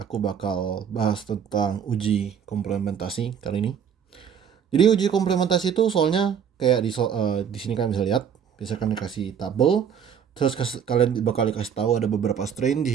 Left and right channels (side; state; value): left; quieter; 7.9 dB